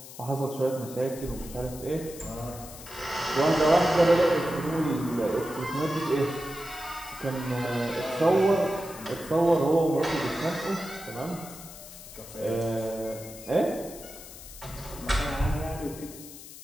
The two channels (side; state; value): left; noise; hiss, 15 dB below the sound